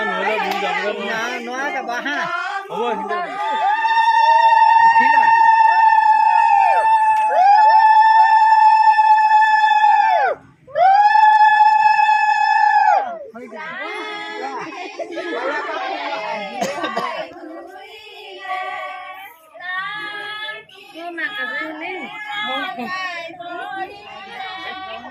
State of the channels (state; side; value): identical; both; correlation 1.00